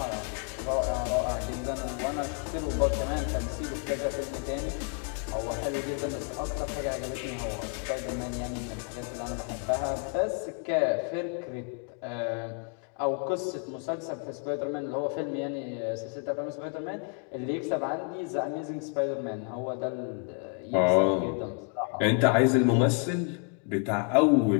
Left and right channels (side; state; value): right; quieter; 37.0 dB